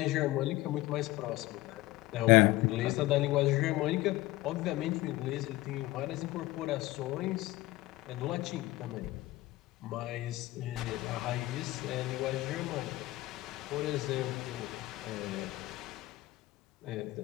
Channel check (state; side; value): quieter; right; 18.4 dB